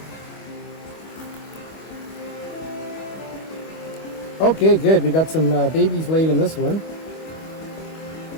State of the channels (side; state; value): right; late; 25 ms